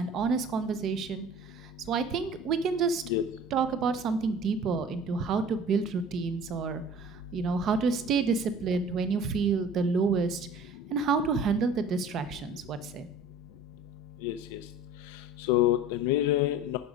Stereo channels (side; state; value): both; normal; correlation 0.44